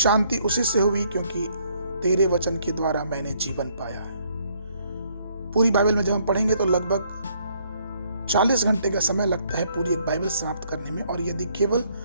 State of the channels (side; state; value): both; inverted; correlation -0.67